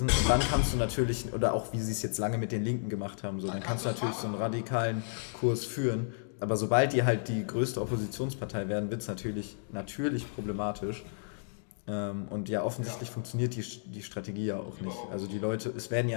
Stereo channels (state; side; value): silent; right; digital silence